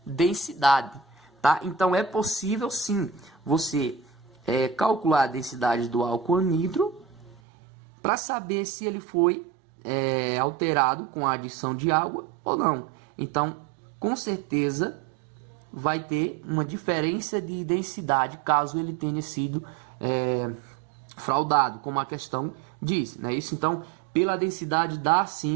densidade, tá? Então é possível sim você calcular a densidade do álcool anidro para saber se ele foi alterado com a adição de água ou não. Então, com certeza vai ter uma diferença de densidade caso ele tenha sido fraudado, como a questão diz, né? Isso, então, pela densidade dá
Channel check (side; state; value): left; drops out; at 7.4 s